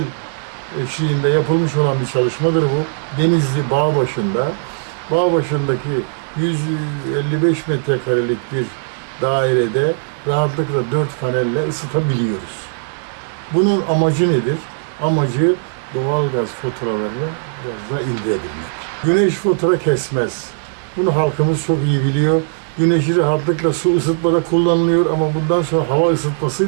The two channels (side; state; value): left; silent; digital silence